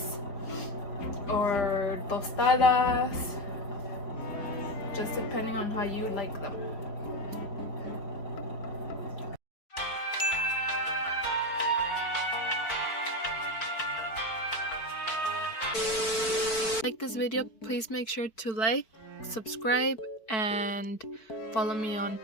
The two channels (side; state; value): right; late; 4.5 ms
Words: or tostadas, just depending on how you like them. Like this video, please make sure to like, subscribe, and follow me on